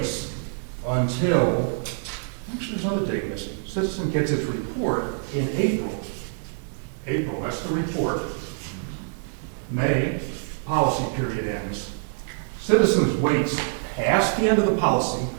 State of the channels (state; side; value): silent; left; 60 dB below the other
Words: until, actually there's another date missing. Citizen gets its report in April. April, that's the report. May, policy period ends. Citizens waits past the end of the policy